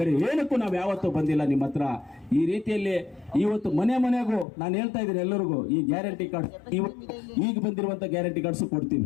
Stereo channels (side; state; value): right; drops out; at 4.5 s